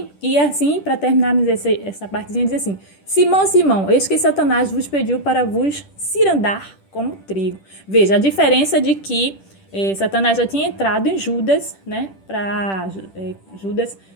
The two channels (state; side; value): late; right; 10 ms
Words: e assim, para terminarmos essa partezinha, diz assim: Simão, Simão, eis que Satanás vos pediu para vos cirandar como trigo. Veja, a diferença de que Satanás já tinha entrado em Judas, né? Para Judas